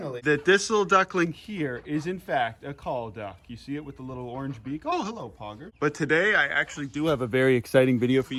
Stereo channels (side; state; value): both; identical; correlation 1.00